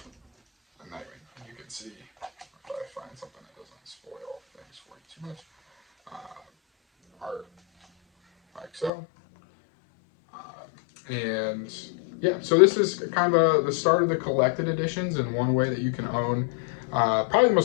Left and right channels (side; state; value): right; drops out; at 8.9 s